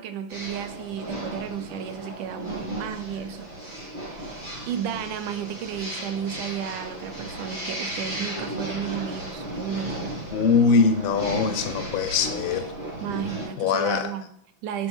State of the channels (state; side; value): late; left; 5.9 ms